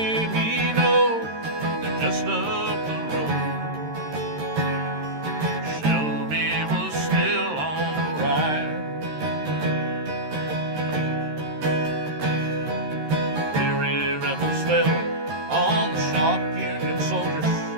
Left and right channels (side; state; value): left; late; 13 ms